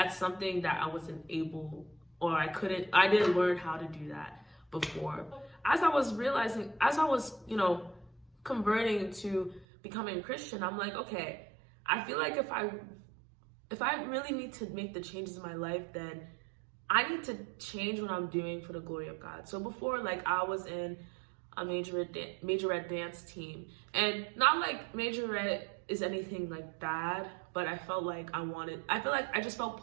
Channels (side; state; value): left; drops out; at 9.7 s